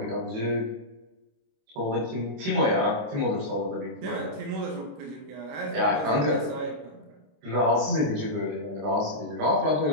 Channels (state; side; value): late; left; 26 ms